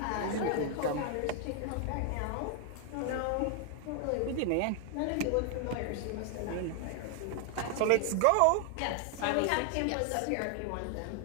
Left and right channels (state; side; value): different; both; correlation 0.00